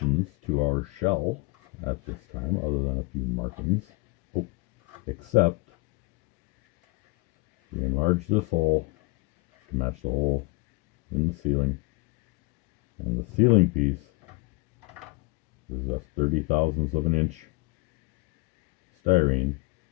to our shell at this time, other than a few markings. Oh, except we enlarged this hole to match the hole in the ceiling, and the ceiling piece is just 30 thousandths of an inch styrene,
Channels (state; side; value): quieter; right; 25.3 dB